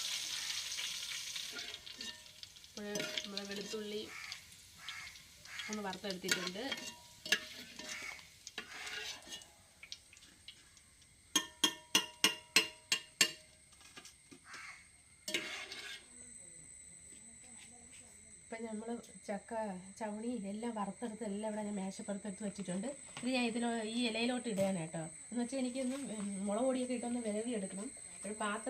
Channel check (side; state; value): both; identical; correlation 1.00